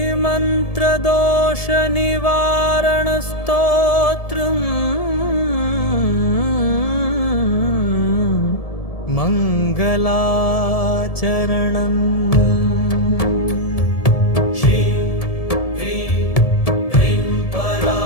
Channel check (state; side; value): late; right; 1.7 ms